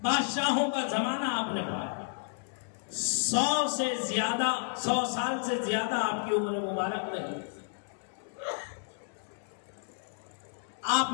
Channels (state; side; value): silent; right; digital silence